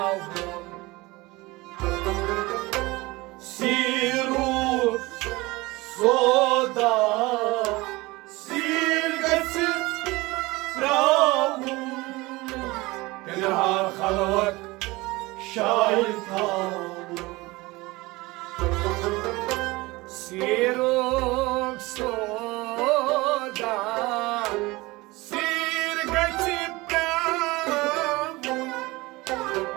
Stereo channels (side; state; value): left; quieter; 21.9 dB